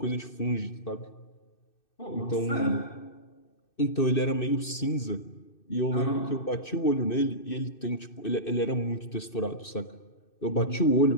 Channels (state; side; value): late; right; 2.6 ms